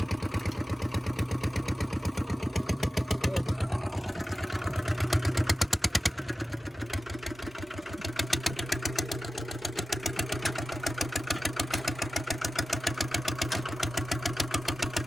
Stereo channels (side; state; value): both; normal; correlation 0.94